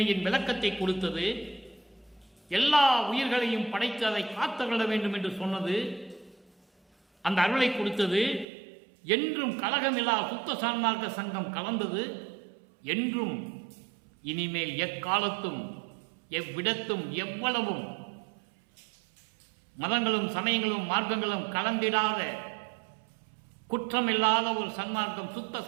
விளக்கத்தை கொடுத்தது, எல்லா உயிர்களையும் படைத்து அதை காத்தருள வேண்டும் என்று சொன்னது, அந்த அருளை கொடுத்தது. என்றும் கலகமில்லா சுத்த சன்மார்க்க சங்கம் கலந்தது. என்றும் இனிமேல் எக்காலத்தும் எவ்விடத்தும் எவ்வளவும் மதங்களும் சமயங்களும் மார்க்கங்களும் கலந்திடாத குற்றமில்லாத ஒரு சன்மார்க்கம், சுத்த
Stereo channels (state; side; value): drops out; left; at 8.5 s